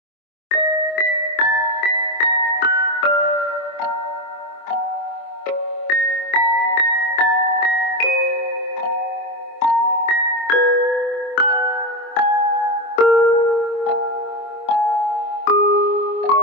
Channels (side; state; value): right; late; 24 ms